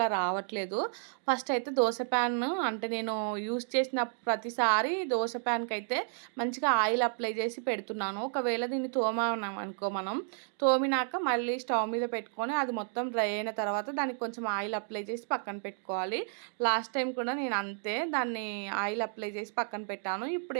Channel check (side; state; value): left; silent; 57 dB below the other